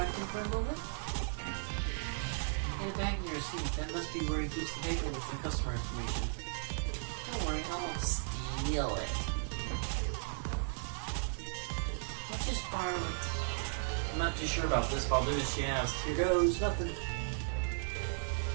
him for a moment? In the bag in your seat, that must be where he keeps the paper with the customer information. Don't worry, I won't steal it. I'll just borrow it. I'm not too sure about this, but I'll do as she asks. Here goes, nothing.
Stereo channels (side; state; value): left; silent; digital silence